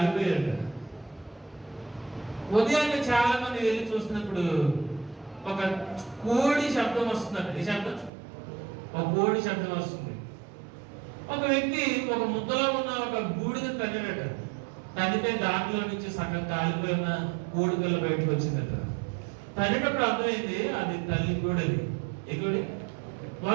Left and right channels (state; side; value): drops out; left; at 8.1 s